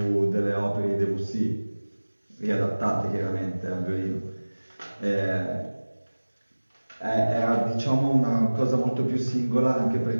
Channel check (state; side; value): inverted; both; correlation -1.00